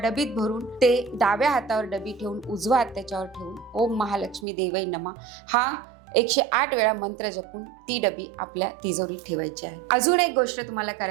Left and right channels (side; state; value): left; drops out; at 4.5 s